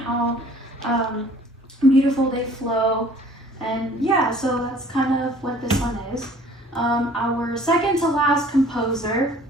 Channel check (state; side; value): normal; both; correlation 0.53